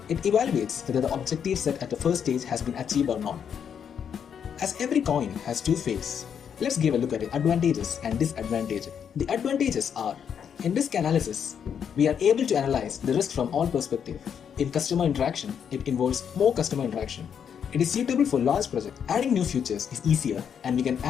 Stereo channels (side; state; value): right; quieter; 7.9 dB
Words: It evaluates whether the objective set at the first stage has been achieved or not. As every coin has 2 faces, let's give a look at the advantages and disadvantages. The advantages are, in risk analysis, we are able to analyze the risk from all perspectives. In customer interaction, it involves more customer interaction. It is suitable for large projects. Adding new features is easier and we can